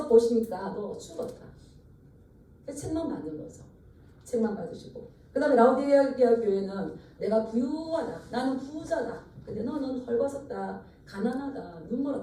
보시니까 너 죽었다. 책만 받는 거죠. 책만 받으시고. 그 다음에 라우디게아 교회는 내가 부유하다. 나는 부자다. 근데 너는 헐벗었다. 가난하다.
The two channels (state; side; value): identical; both; correlation 1.00